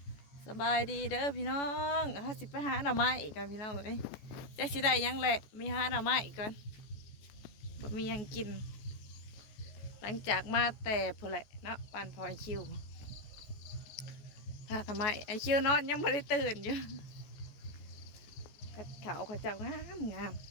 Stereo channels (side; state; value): right; late; 14 ms